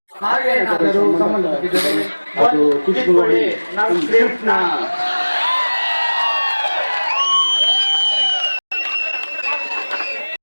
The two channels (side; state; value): both; inverted; correlation -1.00